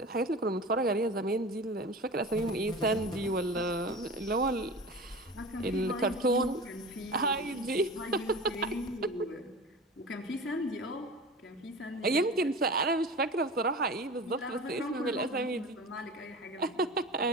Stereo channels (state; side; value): normal; both; correlation 0.34